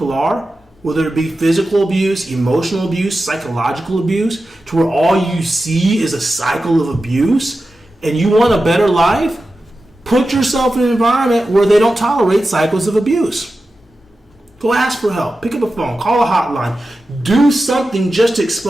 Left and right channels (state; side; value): normal; both; correlation 0.93